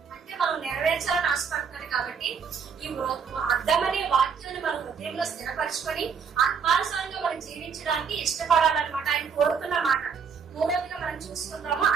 అంటే మనం నెరవేర్చాలని ఆశపడుతున్నాడు. కాబట్టి ఈ అర్థమనే వాక్యాన్ని మన హృదయంలో స్థిరపరచుకొని ఆత్మానుసారంగా మనం జీవించడానికి ఇష్టపడాలన్నమాట ఆయన కోరుతున్న మాట. మూడవదిగా మనం చూసుకుందాము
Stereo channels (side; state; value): left; quieter; 6.3 dB